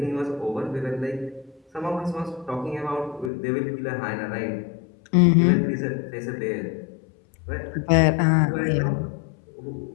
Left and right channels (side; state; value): right; drops out; at 3.3 s